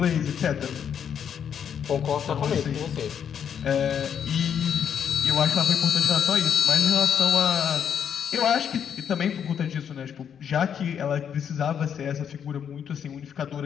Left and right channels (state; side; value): quieter; right; 8.2 dB